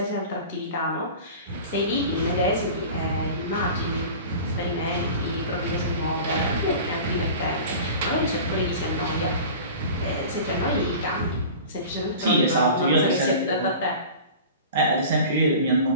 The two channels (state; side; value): inverted; both; correlation -0.38